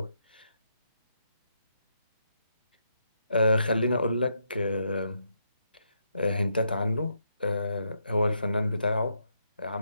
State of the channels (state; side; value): inverted; both; correlation -0.80